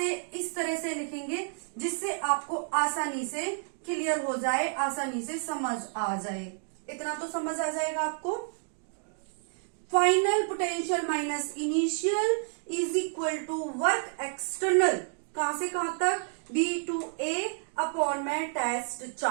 इस तरह से लिखेंगे जिससे आपको आसानी से क्लियर हो जाए, आसानी से समझ आ जाए। इतना तो समझ आ जाएगा आपको। Final potential minus initial is equal to work external, कहां से कहां तक, B to A अपॉन में test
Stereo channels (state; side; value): silent; left; 58 dB below the other